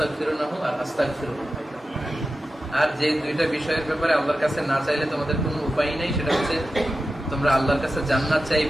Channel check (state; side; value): normal; both; correlation 0.92